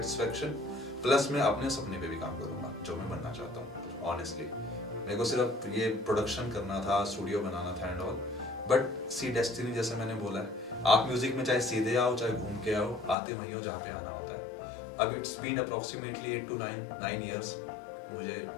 plus मैं अपने सपने पे भी काम करूंगा जो मैं बनना चाहता हूँ। ऑनेस्टली मेरे को सिर्फ ये प्रोडक्शन करना था, स्टूडियो बनाना था and all, but see destiny जैसे मैंने बोला है, आप म्यूजिक में चाहे सीधे आओ चाहे घूम के आओ, आते वहीं हो जहाँ पे आना होता है। अब it's been approximately 8 to 9 years मुझे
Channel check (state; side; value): drops out; right; at 13.2 s